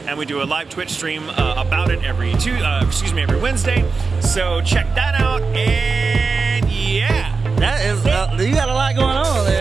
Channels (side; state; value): left; quieter; 4.5 dB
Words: and we do a live Twitch stream about it every Wednesday. So check that out, and yeah. That is, you got a lot going on